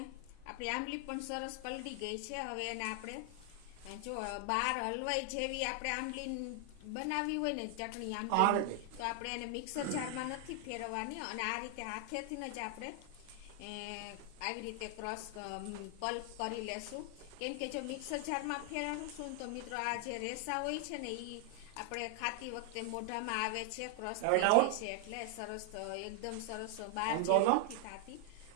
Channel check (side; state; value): both; different; correlation 0.00